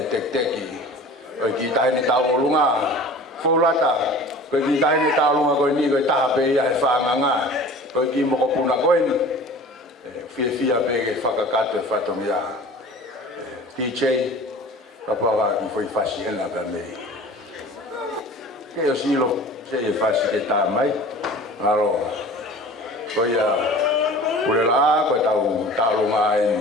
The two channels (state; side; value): normal; both; correlation 0.42